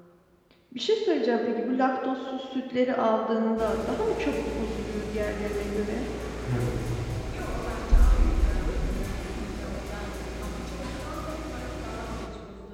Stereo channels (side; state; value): both; identical; correlation 1.00